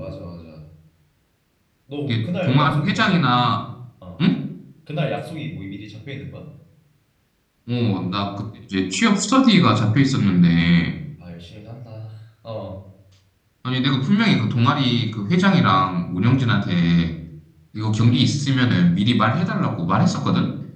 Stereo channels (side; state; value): both; identical; correlation 1.00